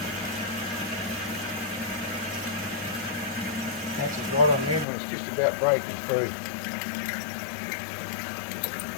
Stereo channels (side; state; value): right; drops out; at 4.9 s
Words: Catches right on the end when it's just about breaking through.